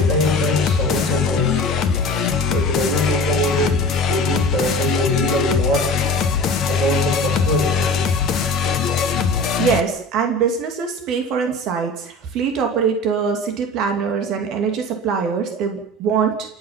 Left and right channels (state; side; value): normal; both; correlation 0.36